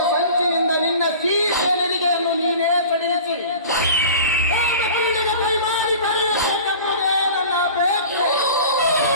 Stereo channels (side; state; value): both; inverted; correlation -0.40